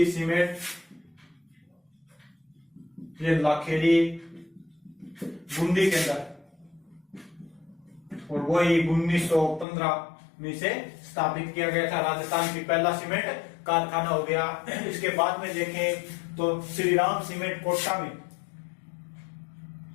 सीमेंट ये लाखेरी बूंदी के अंदर, और वही 1915 में से स्थापित किया गया था। राजस्थान की पहला सीमेंट कारखाना हो गया। इसके बाद में देखें तो श्रीराम सीमेंट कोटा में,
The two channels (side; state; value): right; drops out; at 9.7 s